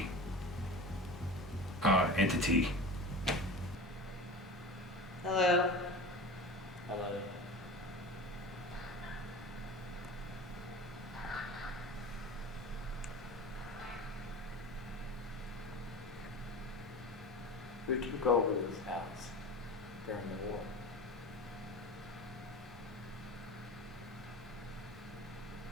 entity. Hello. Hello. Who took over this house during the war?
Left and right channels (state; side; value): normal; both; correlation 0.32